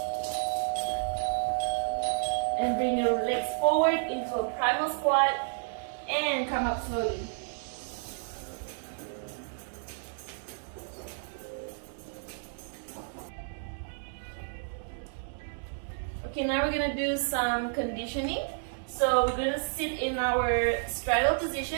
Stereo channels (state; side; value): silent; left; digital silence